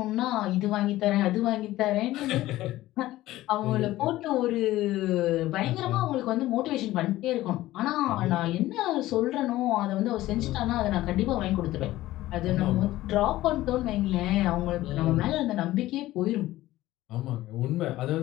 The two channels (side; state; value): right; quieter; 16.1 dB